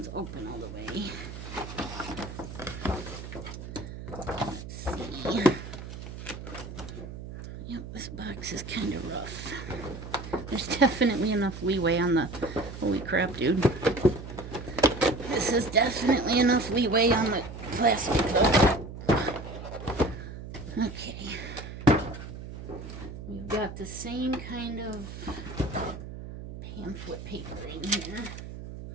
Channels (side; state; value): right; noise; hum, 10 dB below the sound